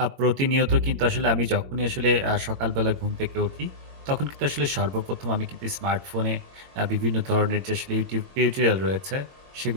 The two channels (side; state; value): left; late; 22 ms